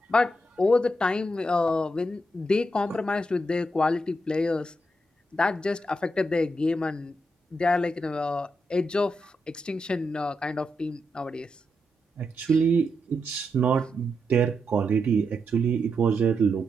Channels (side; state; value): both; normal; correlation 0.83